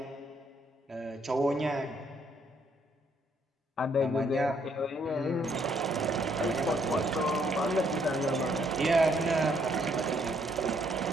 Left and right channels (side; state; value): both; normal; correlation 0.69